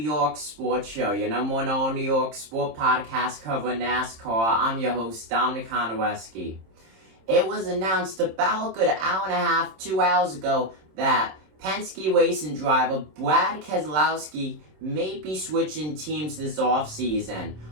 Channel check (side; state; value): left; late; 26 ms